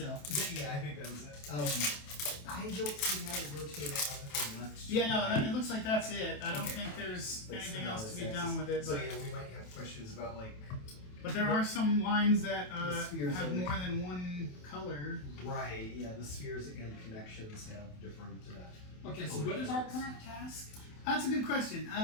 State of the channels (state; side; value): late; right; 27 ms